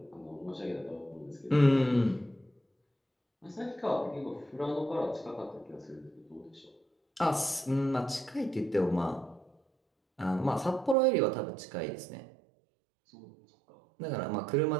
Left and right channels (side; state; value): left; drops out; at 11.0 s